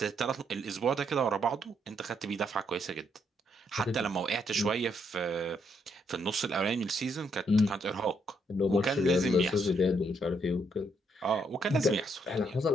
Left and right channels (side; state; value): both; normal; correlation 0.74